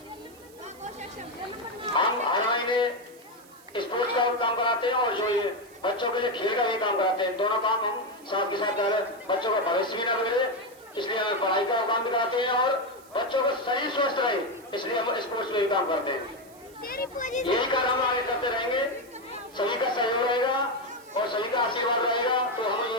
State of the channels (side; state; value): right; noise; hiss, 25 dB below the sound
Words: हम हर महीने स्पोर्ट्स का काम कराते हैं और जो ये बच्चों के लिए खेल का भी काम कराते हैं। दोनों काम हम साथ के साथ कर रहे हैं। बच्चों का भविष्य भी न बिगड़े इसलिए हम पढ़ाई का काम भी कराते हैं और बच्चों का शरीर स्वस्थ रहे इसलिए हम स्पोर्ट्स में भी काम करते हैं। यही कार्य हम आगे करते रहेंगे। सभी का सहयोग रहेगा और सभी का आशीर्वाद रहेगा तो हम